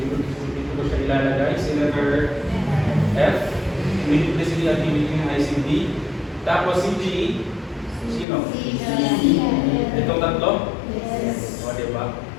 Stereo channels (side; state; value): right; drops out; at 8.2 s